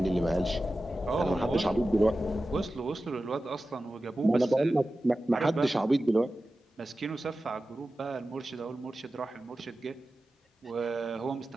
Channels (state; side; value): normal; both; correlation 0.94